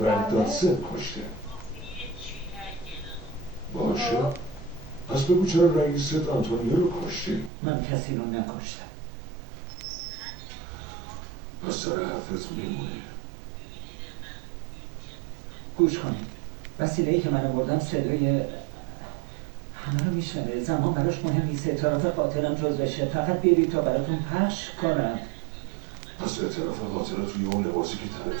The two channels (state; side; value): drops out; left; at 7.5 s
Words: دادسن کشته. باشه. پس بگو چرا رئیست آنتونیو رو کشتی؟ من کسی رو نکشتم. پس سر حرفت میمونه. گوش کنید. وسیله‌ای که من آوردم صدای همه رو میشنوه. زمان براش مهم نیست. اعتراف قاتلم جزوشه. فقط برید تا براتون پخش کنم. پس اعتراف قاتل توی اون لباسی که